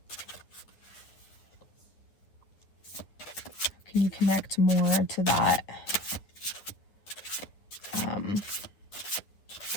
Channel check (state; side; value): late; right; 9.8 ms